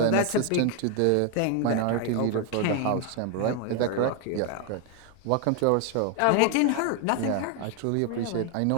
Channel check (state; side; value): different; both; correlation 0.01